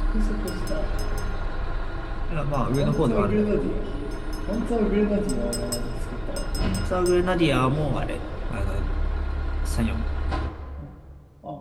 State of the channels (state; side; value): identical; both; correlation 1.00